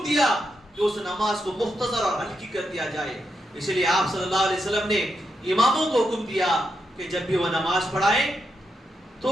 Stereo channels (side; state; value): both; normal; correlation 0.84